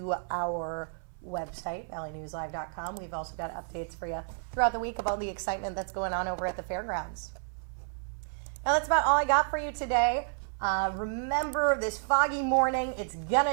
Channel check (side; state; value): left; silent; 57 dB below the other